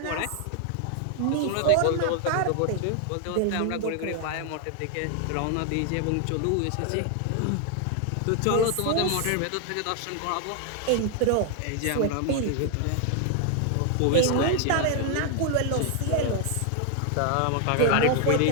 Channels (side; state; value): both; different; correlation 0.00